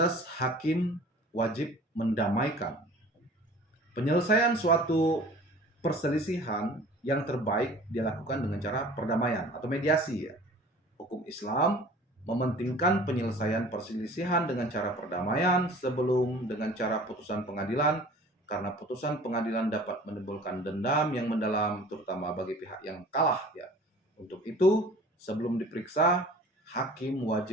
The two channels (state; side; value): normal; both; correlation 0.46